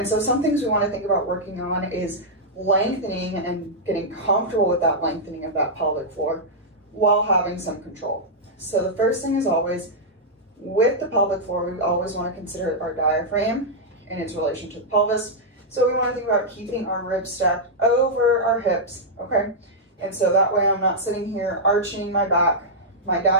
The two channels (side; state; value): both; normal; correlation -0.07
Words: so some things we want to think about working on is lengthening and getting comfortable with that lengthening of that pelvic floor while having some control. So the first thing is always, with the pelvic floor, we always want to consider our diaphragm in its relation to the pelvis. So we want to think about keeping our ribs stacked over our hips, okay? And so that way I'm not sitting here arching my back, my